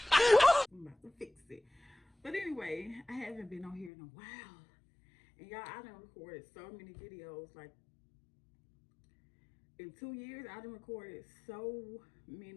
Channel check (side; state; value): right; drops out; at 3.9 s